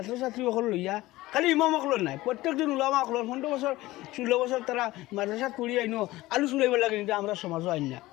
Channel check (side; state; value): right; quieter; 18.1 dB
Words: লইয়া খালি ইমামসকলের নাই প্রত্যেকজন উলামাসকলের 15 বছর 16 বছর তারা মাদ্রাসাত পড়ি আইনো আলু চুলাইব লাগে কিন্তু আমরা সমাজও আইন না